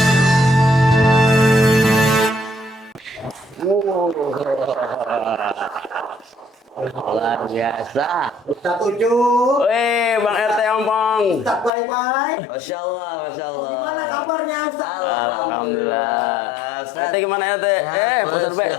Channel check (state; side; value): drops out; right; at 11.7 s